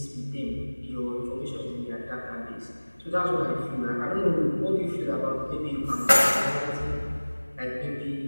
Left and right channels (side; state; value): both; inverted; correlation -1.00